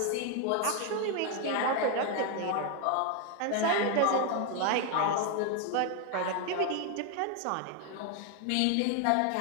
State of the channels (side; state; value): both; different; correlation 0.01